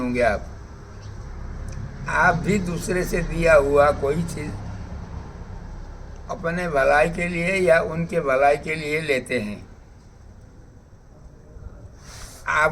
आप भी दूसरे से दिया हुआ कोई चीज अपने भलाई के लिए या उनके भलाई के लिए लेते हैं।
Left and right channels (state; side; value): identical; both; correlation 1.00